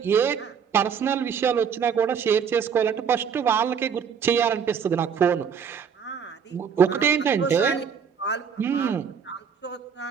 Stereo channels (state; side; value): quieter; left; 7.1 dB